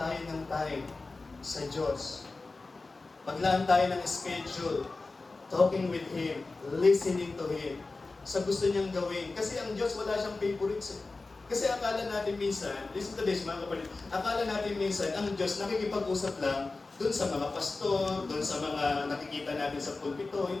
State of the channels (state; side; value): quieter; right; 3.6 dB